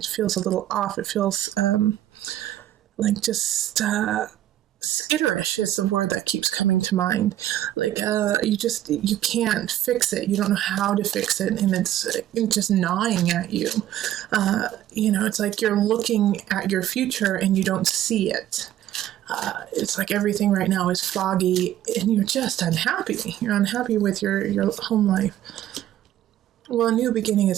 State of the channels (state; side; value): quieter; left; 12.6 dB